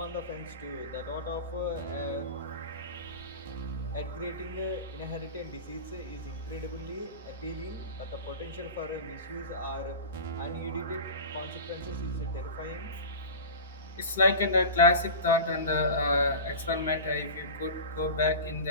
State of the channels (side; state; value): both; inverted; correlation -0.31